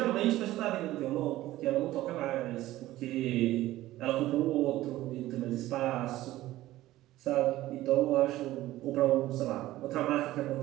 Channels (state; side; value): quieter; left; 15.8 dB